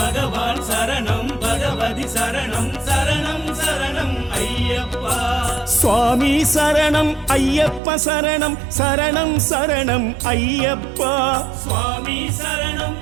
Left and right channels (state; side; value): drops out; left; at 7.8 s